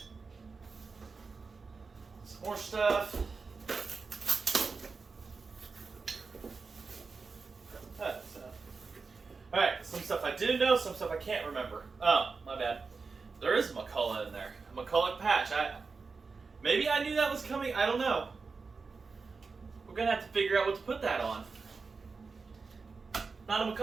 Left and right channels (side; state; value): left; quieter; 4.6 dB